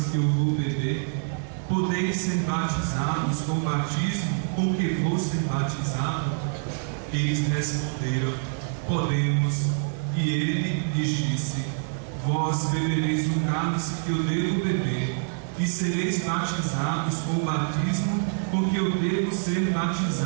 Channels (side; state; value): left; silent; 61 dB below the other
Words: que eu vou beber? Podeis ser batizados com o batismo com que vou ser batizado? Eles responderam: podemos. E ele lhes disse: vós bebereis o cálice que eu devo beber, e sereis batizados com o batismo com que eu devo ser